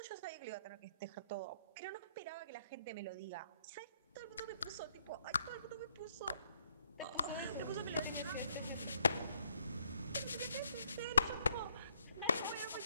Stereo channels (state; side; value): inverted; both; correlation -0.70